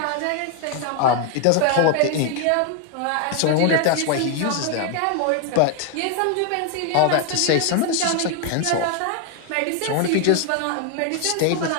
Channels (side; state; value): both; different; correlation 0.01